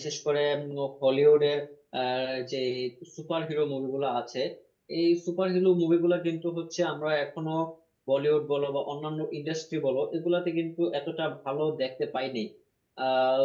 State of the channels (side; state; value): both; identical; correlation 1.00